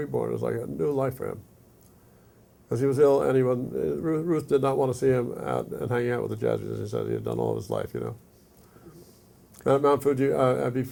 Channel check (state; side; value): identical; both; correlation 1.00